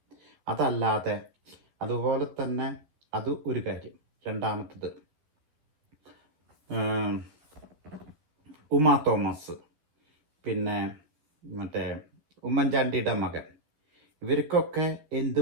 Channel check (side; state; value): left; late; 13 ms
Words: അതല്ലാതെ അതുപോലെ തന്നെ അത് ഒരു കാര്യം. രണ്ടാമത്തത്, ഉമാ തോമസ്, പിന്നെ മറ്റേ ഉമ്മൻചാണ്ടിയുടെ മകൻ, ഇവർക്കൊക്കെ